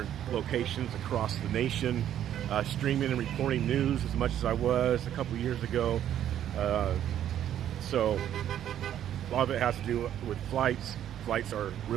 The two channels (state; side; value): quieter; left; 10.8 dB